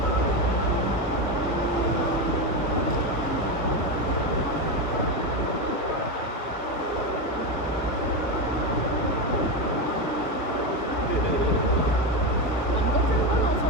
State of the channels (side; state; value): both; normal; correlation 0.13